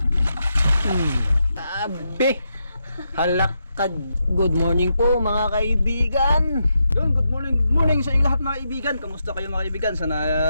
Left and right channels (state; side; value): inverted; both; correlation -0.83